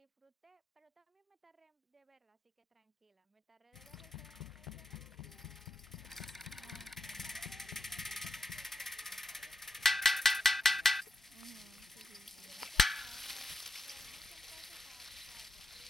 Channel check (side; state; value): both; normal; correlation 0.86